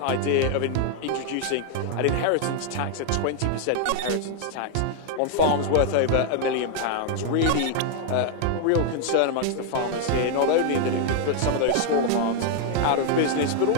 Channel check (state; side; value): different; both; correlation 0.00